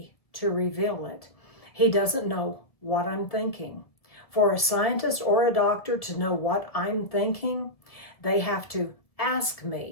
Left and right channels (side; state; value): right; late; 1.6 ms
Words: to reveal it. He doesn't know what I'm thinking. For a scientist or a doctor to know what I'm thinking, they have to ask